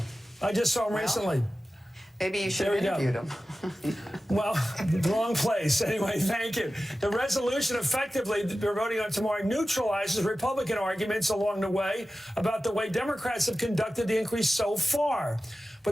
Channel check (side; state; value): both; normal; correlation 0.95